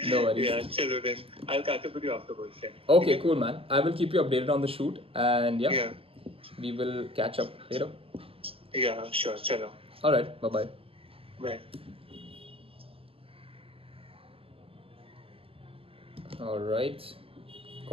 No worries. Yeah, chalo then. I'll catch up with you afterwards. Yeah. Okay, cool, man. I will keep you updated on the shoot, and yeah, we will catch up later. Yeah, sure. Chalo. All right. Bye-bye. Bye. All right.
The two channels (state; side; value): late; left; 0.27 ms